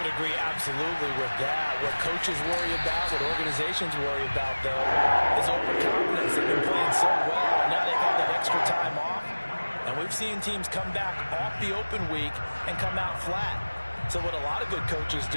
would agree absolutely with that. What coaches worry about, what organizations worry about, though, is overconfidence. They've been playing so well, and now they've had that extra time off. And we've seen teams come back off the open week and come out flat. So what a lot of good coaches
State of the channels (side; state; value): both; inverted; correlation -1.00